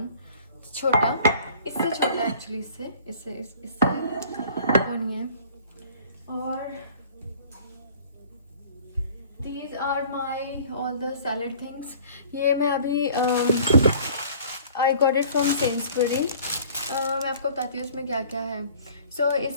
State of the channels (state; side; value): inverted; both; correlation -0.50